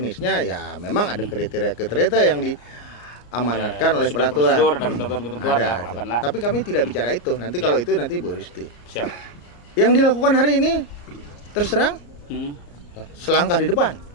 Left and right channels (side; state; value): right; late; 34 ms